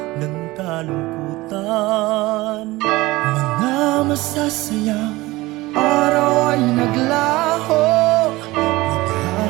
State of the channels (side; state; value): left; quieter; 19.9 dB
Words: ng kalungkutan. Mga masasayang araw ay naglaho,